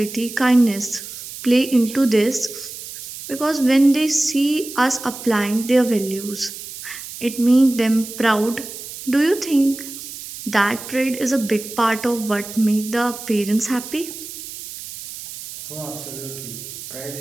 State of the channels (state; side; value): noise; right; hiss, 12 dB below the sound